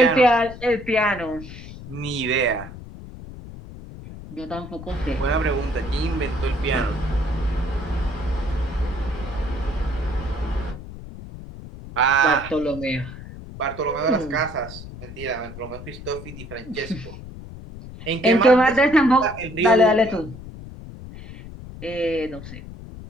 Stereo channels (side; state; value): left; noise; rumble, 13 dB below the sound